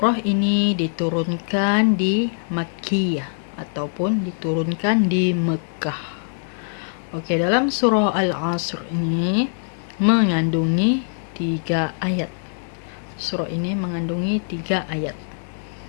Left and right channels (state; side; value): silent; right; 62 dB below the other